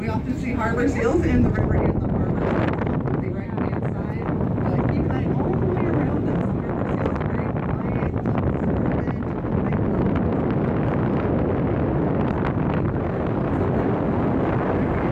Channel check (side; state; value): both; identical; correlation 1.00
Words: often see harbor seals in the river and the harbor. The right-hand side. But keep an eye all the way around us. Some harbor seals are very quiet, observant.